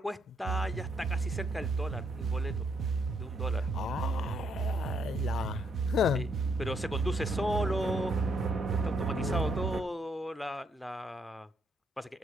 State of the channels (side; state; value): both; normal; correlation 0.73